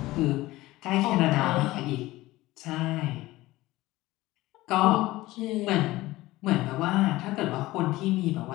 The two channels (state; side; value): quieter; right; 18.1 dB